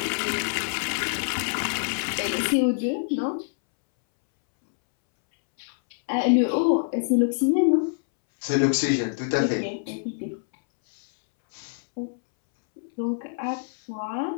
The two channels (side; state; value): right; silent; 61 dB below the other